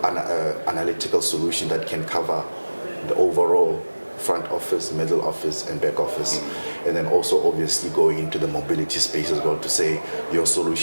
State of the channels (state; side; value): inverted; both; correlation -1.00